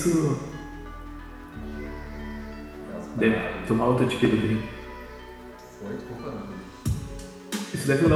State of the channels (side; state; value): both; identical; correlation 1.00